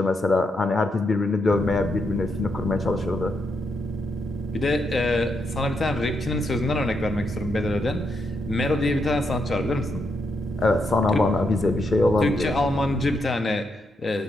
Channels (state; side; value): normal; both; correlation 0.81